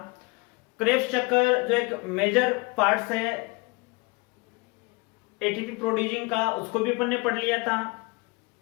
क्रेब्स चक्कर जो एक मेजर पार्ट्स है एटीपी प्रोड्यूसिंग का, उसको भी अपन ने पढ़ लिया था।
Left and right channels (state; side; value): quieter; right; 26.5 dB